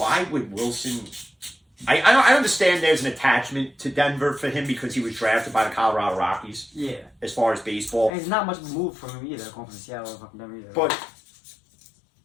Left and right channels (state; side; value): drops out; right; at 8.1 s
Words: would Wilson... I understand there's an attachment to Denver for him because he was drafted by the Colorado Rockies. Yeah. As far as baseball. And it's not much of a move from him either, going from Seattle to fucking Denver either. But